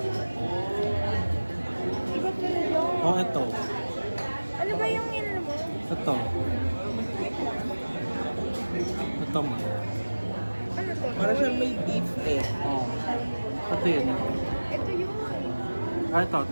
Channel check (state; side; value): inverted; both; correlation -1.00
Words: Iba pala yun. Oh, ito. Ano ba yung yun mo? Ito. Ito mo. Ano to? Para siyang may beef eh. Oh. Ito yun. Ito yun. Ah, ito.